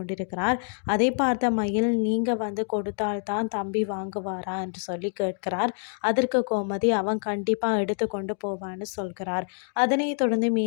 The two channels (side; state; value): right; silent; 61 dB below the other